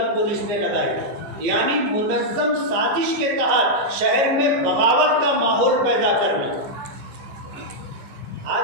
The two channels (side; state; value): left; late; 15 ms